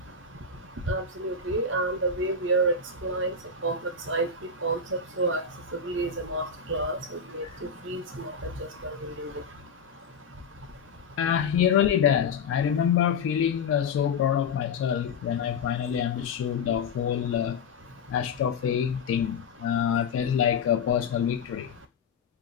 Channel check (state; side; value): quieter; right; 5.0 dB